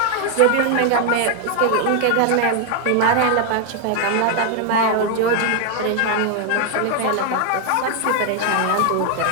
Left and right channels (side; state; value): both; different; correlation 0.01